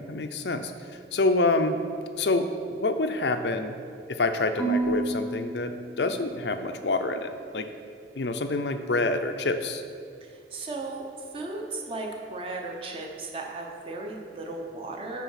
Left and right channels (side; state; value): both; normal; correlation 0.13